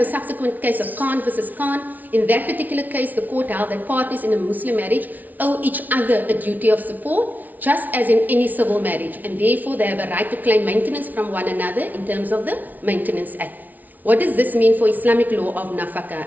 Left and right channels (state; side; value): late; left; 0.079 ms